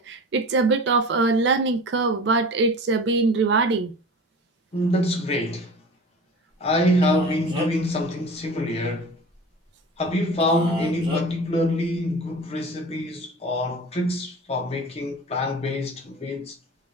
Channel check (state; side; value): normal; both; correlation 0.37